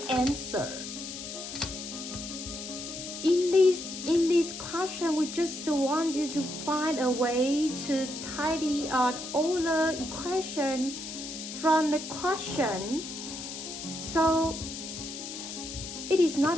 answer. In this question, we just want you to find a way to tidy out all the equation from the question. So it is not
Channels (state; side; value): noise; left; hiss, 8 dB below the sound